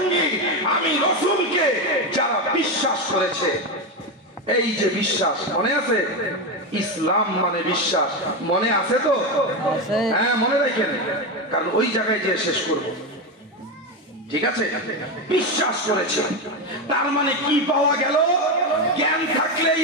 আমি রাসূলকে যারা বিশ্বাস করেছে। এই যে বিশ্বাস, মনে আছে? ইসলাম মানে বিশ্বাস, মনে আছে তো? হ্যাঁ, মনে রাখেন, কারণ ওই জায়গায় যে শেষ করব। ঠিক আছে? বিশ্বাস করেছে, তার মানে কি পাওয়া গেল? জ্ঞান থাকলে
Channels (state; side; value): normal; both; correlation 0.13